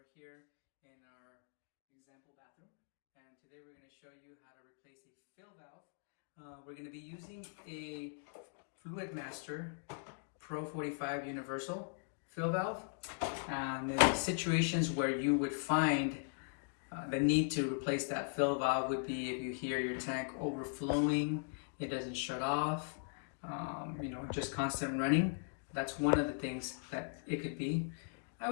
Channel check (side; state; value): right; silent; digital silence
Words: here in our example bathroom. And today we're going to show you how to replace a fill valve. We're going to be using a Fluid Master Pro 45 Universal fill valve. And the situations where you would find the need to replace that fill valve would be if you hear your tank overflowing, it doesn't shut off, just constant running. That's one of the things that it could be. I